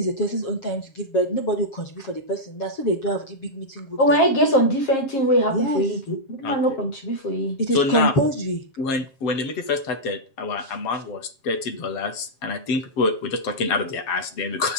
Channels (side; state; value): right; late; 7.4 ms